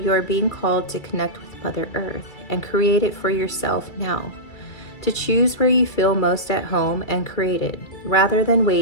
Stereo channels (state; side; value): late; right; 2.4 ms